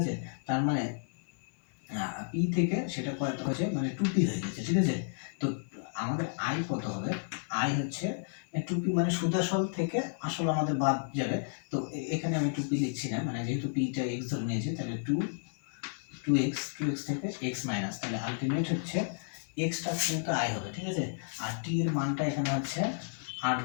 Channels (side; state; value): right; silent; digital silence